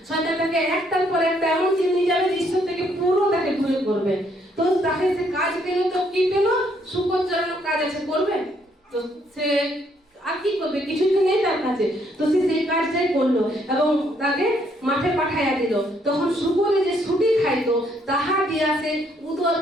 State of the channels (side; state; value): both; normal; correlation 0.70